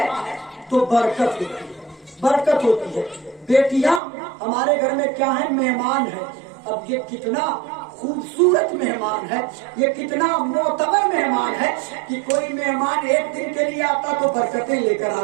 तो बरकत होती है, बरकत होती है। बेटियां हमारे घर में क्या है, मेहमान है। अब ये कितना खूबसूरत मेहमान है, ये कितना मोतबर मेहमान है कि कोई मेहमान 1 दिन के लिए आता तो बरकतें लेकर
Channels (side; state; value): left; drops out; at 4.0 s